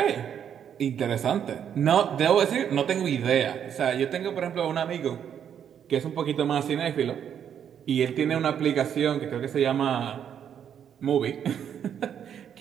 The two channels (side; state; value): left; quieter; 8.7 dB